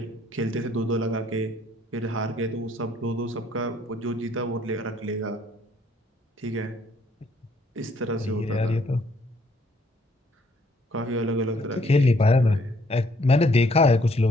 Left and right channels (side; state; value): both; normal; correlation 0.65